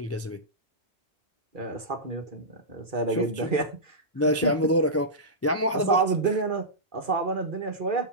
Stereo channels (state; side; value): normal; both; correlation -0.14